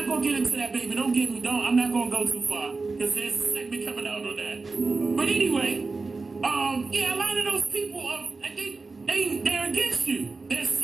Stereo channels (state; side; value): quieter; left; 3.9 dB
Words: going to get into that, baby. Don't get me down. I'm not going to go too far. Because there's a segment coming out on that. But anyway, a lot of those people, they're against you. They're